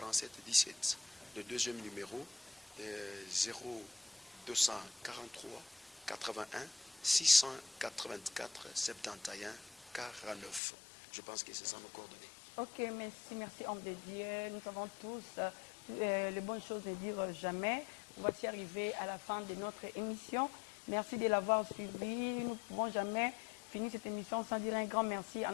17. Le deuxième numéro 0243 81 684 71 49. Je pense que c'est ça nos coordonnées. Ok, merci homme de Dieu. Nous savons tous les bonnes choses ne dire jamais. Voici arrivé à la fin de notre émission. Merci de l'avoir suivi. Nous ne pouvons jamais finir cette émission sans dire un grand merci à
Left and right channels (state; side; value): drops out; right; at 10.6 s